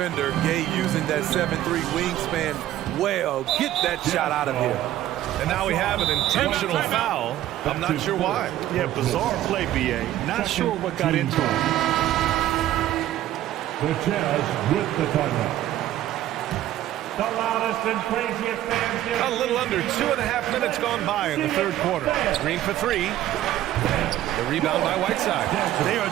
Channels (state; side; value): quieter; left; 13.4 dB